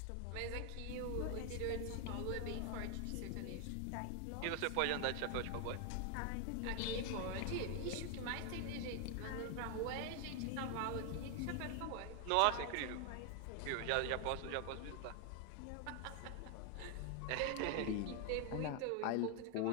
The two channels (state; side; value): different; both; correlation 0.00